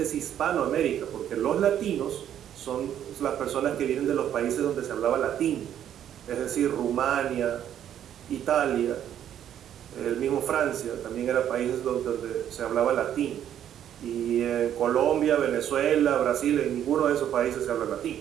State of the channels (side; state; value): left; quieter; 10.3 dB